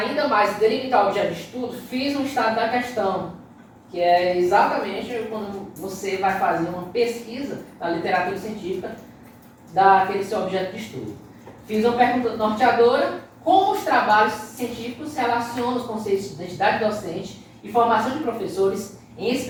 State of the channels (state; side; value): identical; both; correlation 1.00